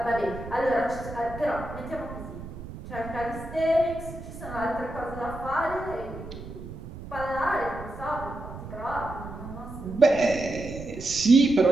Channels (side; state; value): right; noise; rumble, 12 dB below the sound